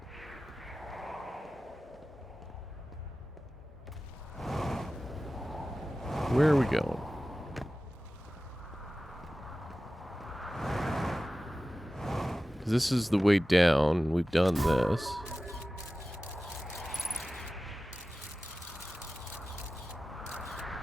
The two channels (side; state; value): both; normal; correlation 0.95